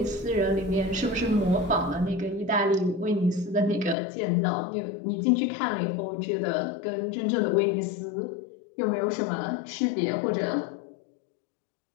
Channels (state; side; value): drops out; right; at 4.0 s